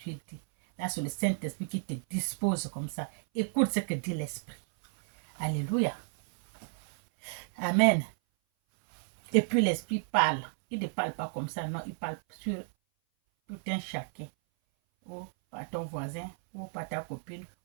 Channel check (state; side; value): silent; left; 56 dB below the other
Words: dit. Là, c'est le Saint-Esprit qui te dispose comme ça. Écoute ce que dit l'Esprit. Alléluia. Amen. Et puis l'Esprit parle. Il ne parle pas comme ça, non, il parle sur tout un chacun. Ou par ton voisin, ou par ta copine,